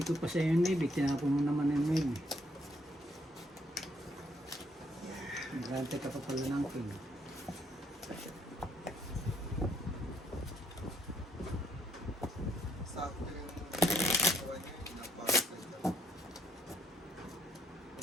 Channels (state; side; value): normal; both; correlation 0.69